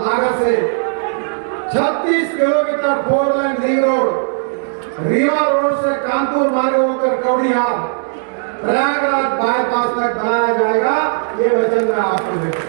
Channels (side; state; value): left; silent; digital silence